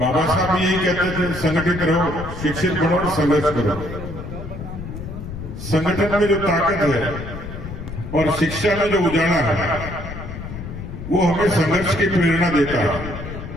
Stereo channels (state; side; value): noise; left; rumble, 9 dB below the sound